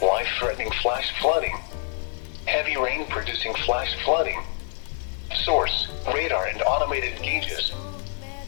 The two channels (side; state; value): right; silent; 60 dB below the other